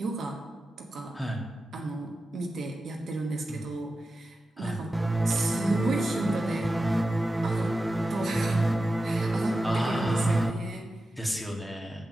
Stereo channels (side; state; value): both; normal; correlation 0.92